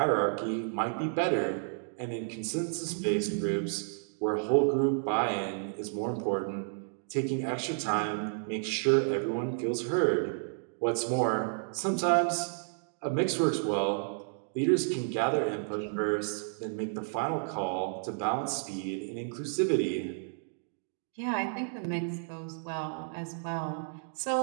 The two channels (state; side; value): silent; left; digital silence